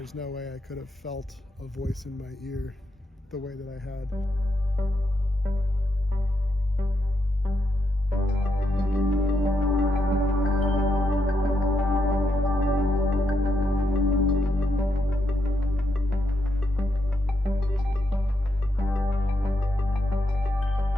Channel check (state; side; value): normal; both; correlation 0.81